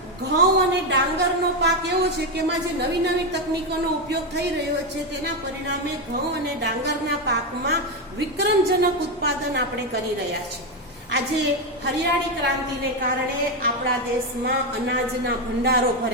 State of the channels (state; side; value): normal; both; correlation 0.08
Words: ઘઉં અને ડાંગરનો પાક એવો છે કે એમાં જે નવી નવી તકનીકોનો ઉપયોગ થઈ રહ્યો છે, તેના પરિણામે ઘઉં અને ડાંગરના પાકમાં વિક્રમજનક ઉત્પાદન આપણે કરી રહ્યા છીએ. આજે હરિયાળી ક્રાંતિને કારણે આપણા દેશમાં અનાજના ભંડારો